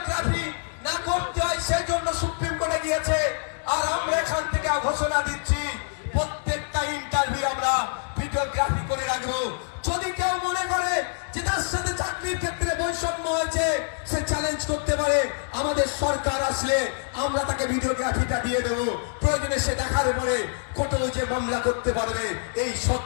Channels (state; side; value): silent; right; digital silence